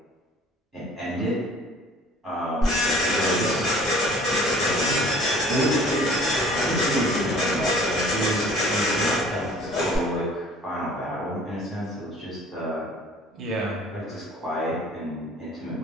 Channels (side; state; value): both; normal; correlation 0.50